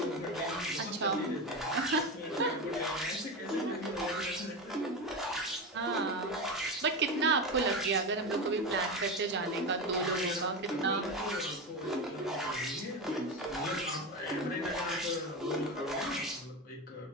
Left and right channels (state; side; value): normal; both; correlation 0.20